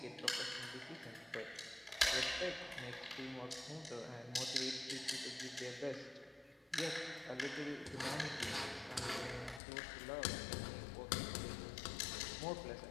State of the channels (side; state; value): right; drops out; at 9.6 s